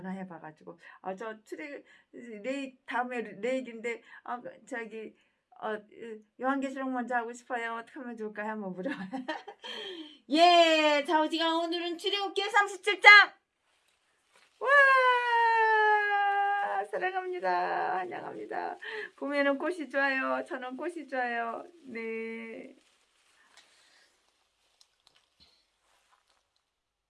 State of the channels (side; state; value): both; identical; correlation 1.00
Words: 저 다음에 레이기인데 저기 요한계시록 먼저 하고 싶어요. 어떻게 하면 좋을까요? 한번 물어봐. 예, 자, 우지가 오늘은 출애굽기 37장. 와, 사랑합니다. 환영합니다. 봄에는 꽃이 좋아요. 저는 꽃이 좋아요. 네.